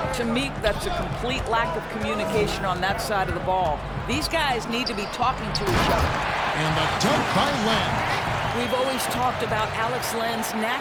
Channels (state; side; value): identical; both; correlation 1.00